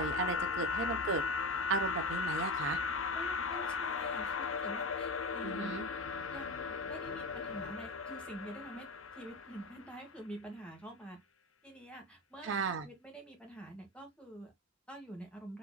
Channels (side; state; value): both; normal; correlation 0.21